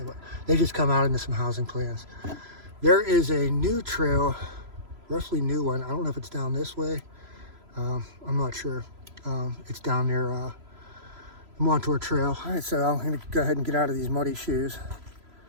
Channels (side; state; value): left; late; 3.0 ms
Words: what, they just come out into some housing plans. There is a new trail, roughly new one. I don't know if it's down this way. I'm not sure. It's down near the Montour Trail. All right, so I'm gonna go ahead and get out of these muddy shoes.